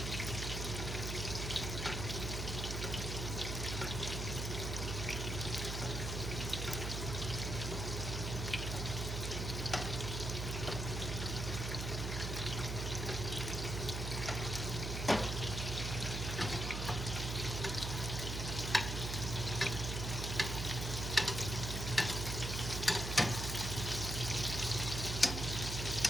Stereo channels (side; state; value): right; noise; hum, 3 dB below the sound